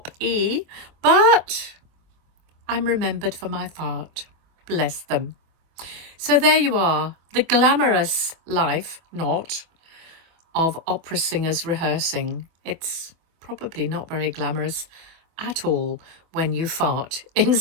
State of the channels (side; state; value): left; late; 24 ms